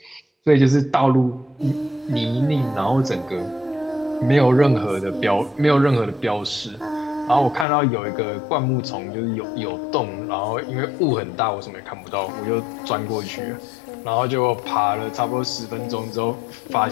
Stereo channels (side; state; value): right; drops out; at 7.7 s